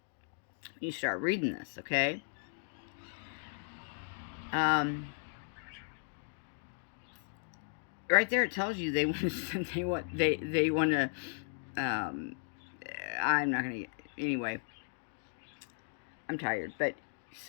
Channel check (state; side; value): silent; right; digital silence